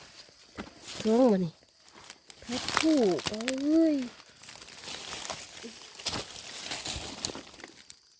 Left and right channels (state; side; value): identical; both; correlation 1.00